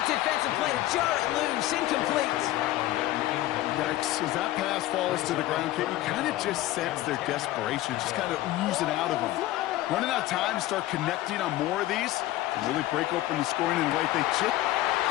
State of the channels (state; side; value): quieter; right; 15.7 dB